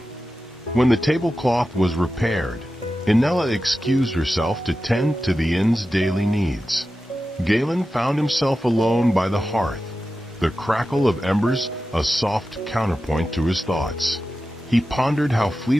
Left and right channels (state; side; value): normal; both; correlation 0.92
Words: When the tablecloth was repaired, Inella excused herself to tend to the inn's daily needs. Galen found himself alone by the hearth, the crackle of embers a soft counterpoint to his thoughts. He pondered how